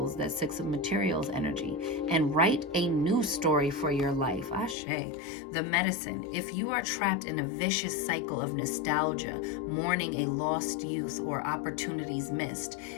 that Six of Materials energy. And write a new story for your life. Ashe. The medicine. If you are trapped in a vicious cycle of nostalgia, mourning a lost youth or opportunities missed,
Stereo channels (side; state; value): right; drops out; at 4.8 s